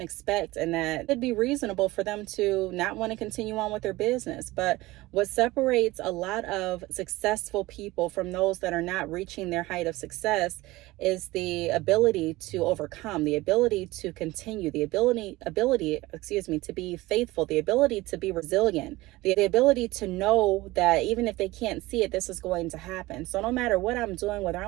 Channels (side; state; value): left; quieter; 19.5 dB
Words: expect, and that it'd be reasonable for them to not want to continue on with their business. But what separates a lot of successful people from those that are not reaching their height of success is the ability to overcome, the ability to continue, the ability to be faithful, the ability to be resilient, the ability to know that even if they can't see it, this is going to happen. So no matter what I'm doing, whether